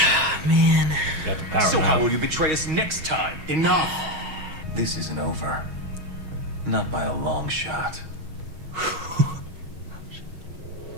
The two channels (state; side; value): late; left; 6.3 ms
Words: Man. So how will you betray us next time? Enough! This isn't over. Not by a long shot.